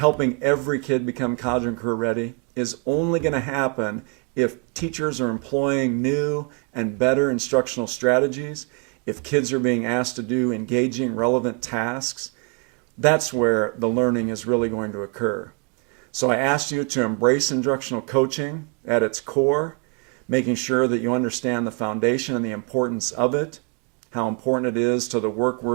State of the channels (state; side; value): quieter; left; 33.9 dB